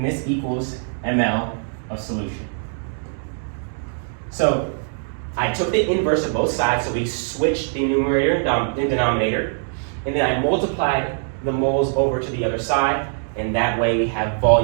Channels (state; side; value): silent; left; 64 dB below the other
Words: this equals ml of solution. So I took the inverse of both sides, so we switched the numerator and denominator, and then I multiplied the moles over to the other side, and that way we have